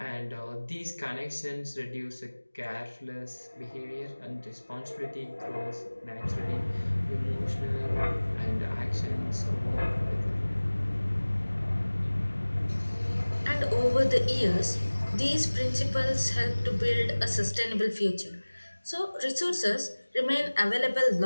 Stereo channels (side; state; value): both; inverted; correlation -1.00